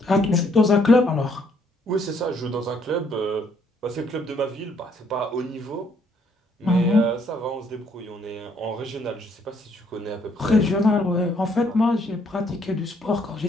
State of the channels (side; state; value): both; normal; correlation 0.68